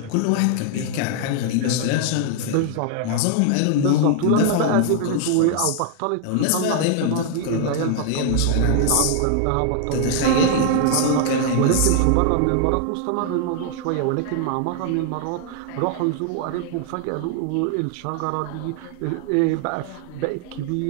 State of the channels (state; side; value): different; both; correlation 0.00